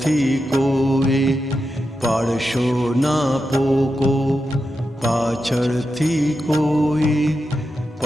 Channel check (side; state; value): both; normal; correlation 0.88